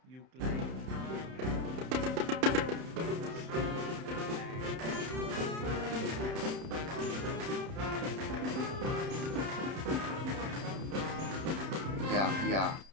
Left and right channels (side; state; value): left; late; 31 ms